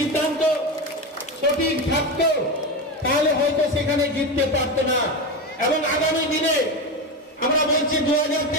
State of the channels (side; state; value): both; normal; correlation 0.18